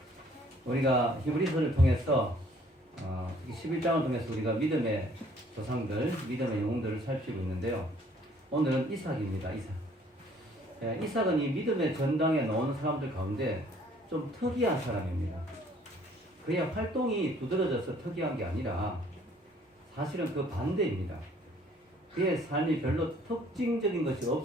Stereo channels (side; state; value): both; normal; correlation 0.60